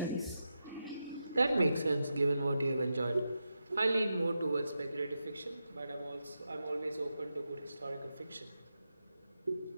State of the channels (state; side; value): inverted; both; correlation -0.88